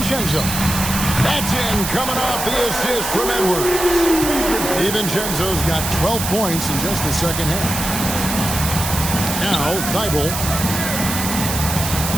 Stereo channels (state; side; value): noise; right; hiss, 4 dB below the sound